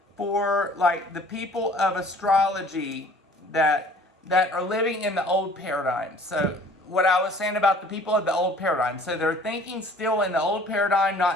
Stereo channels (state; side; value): normal; both; correlation 0.51